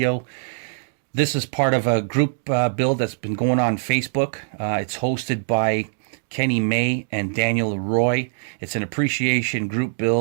This is part of a group build that's been going on Facebook. It's hosted by Kenny May and Daniel Roy. It's an appreciation group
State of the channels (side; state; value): left; silent; digital silence